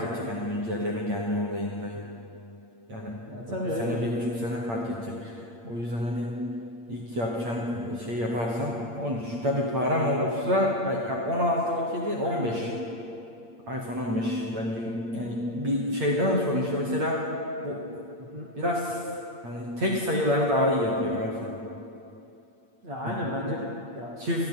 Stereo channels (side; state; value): left; late; 8.7 ms